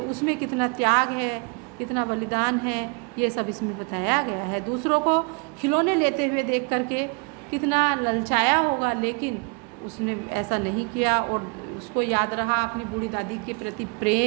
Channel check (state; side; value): quieter; left; 33.0 dB